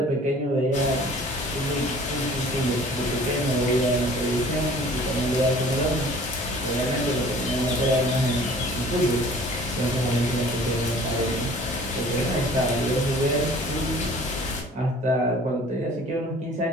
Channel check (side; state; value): both; normal; correlation 0.49